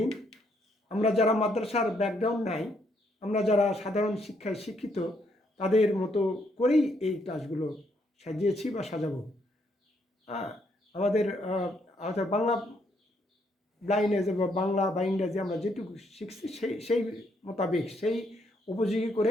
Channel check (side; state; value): both; normal; correlation 0.73